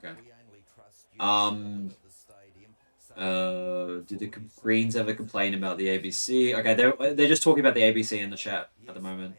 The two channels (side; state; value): both; inverted; correlation -1.00